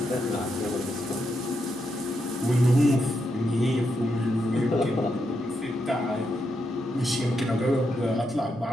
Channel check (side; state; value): both; normal; correlation 0.82